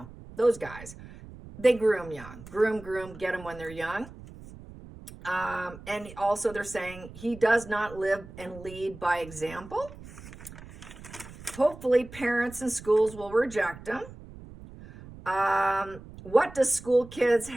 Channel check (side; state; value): right; noise; rumble, 16 dB below the sound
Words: those guys, they groom young, groom, get them when they're young. And also they're saying he does not live and lead by example. Hopefully parents and schools will reject him. What does school kids